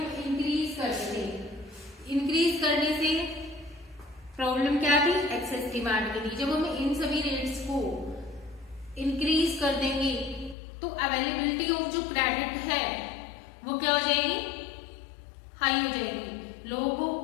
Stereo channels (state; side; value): drops out; right; at 10.6 s